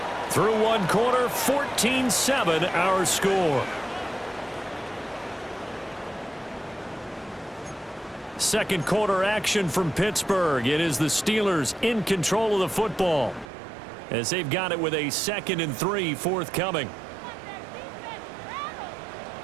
Through one quarter, 14-7 our score. Second quarter action from Pittsburgh. It is the Steelers in control of the football, as they've got it with a 2nd and 3 forthcoming.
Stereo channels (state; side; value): drops out; left; at 13.5 s